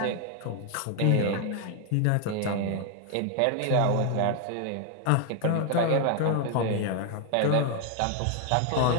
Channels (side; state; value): both; different; correlation 0.00